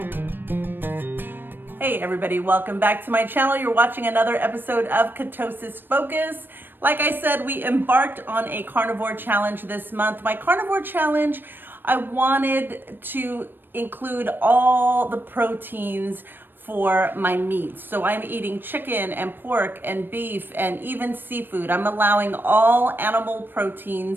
Hey everybody, welcome back to my channel. You're watching another episode of Ketosis Focus. Like I said, we embarked on a carnivore challenge this month. My carnivore challenge, I wanted to include all the proteins for my meats. So I'm eating chicken and pork and beef and even seafood. I'm allowing all animal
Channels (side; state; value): left; late; 0.095 ms